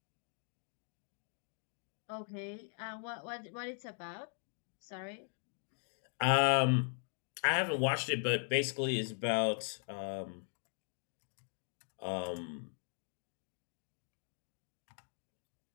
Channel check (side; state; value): right; silent; 51 dB below the other